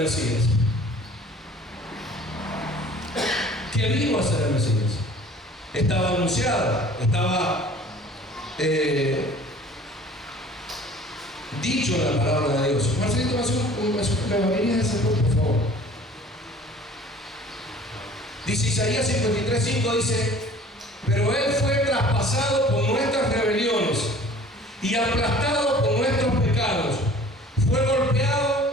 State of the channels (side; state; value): both; normal; correlation 0.49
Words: Mesías. ¿Qué vino a ser el Mesías? Estaba anunciada, estaba dicho en la palabra de Dios. Marcelito, ¿me venía a ese por favor? Dice Isaías 53:5, dice, pero Él fue traspasado por nuestras rebeliones y aplastado por nuestros pecados. Fue